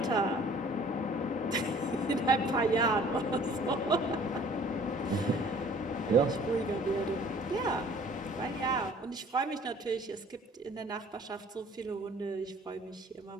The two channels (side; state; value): both; normal; correlation 0.53